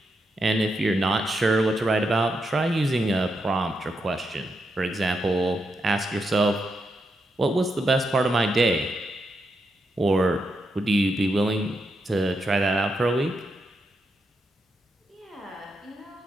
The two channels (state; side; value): normal; both; correlation 0.83